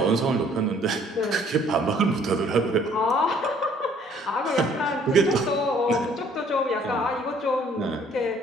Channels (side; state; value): both; normal; correlation 0.59